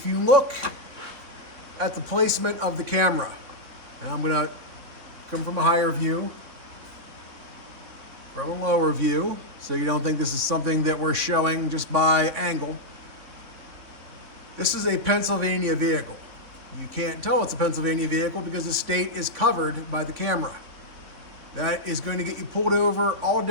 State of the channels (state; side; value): late; left; 3.9 ms